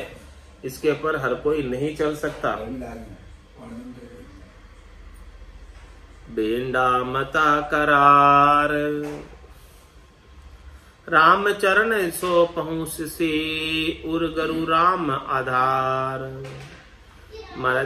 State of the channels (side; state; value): both; identical; correlation 1.00